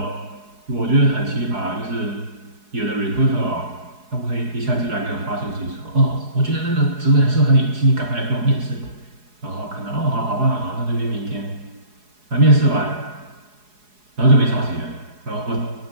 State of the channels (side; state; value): left; late; 4.8 ms